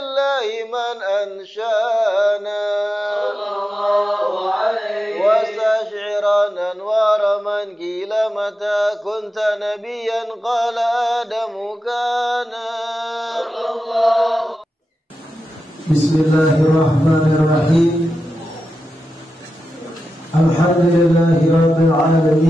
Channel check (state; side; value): normal; both; correlation 0.91